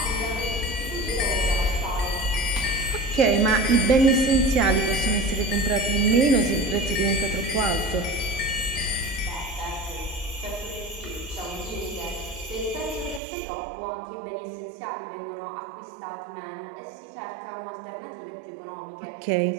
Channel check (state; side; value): drops out; left; at 13.2 s